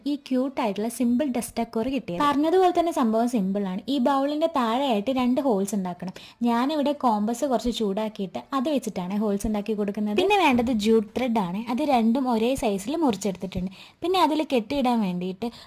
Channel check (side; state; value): both; identical; correlation 1.00